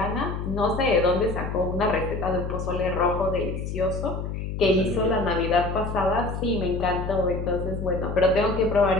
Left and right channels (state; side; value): noise; left; hum, 5 dB below the sound